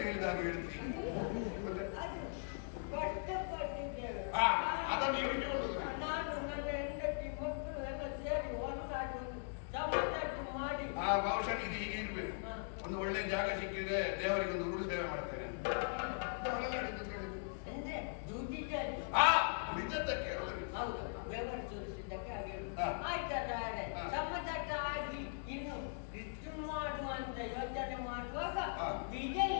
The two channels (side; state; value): right; silent; digital silence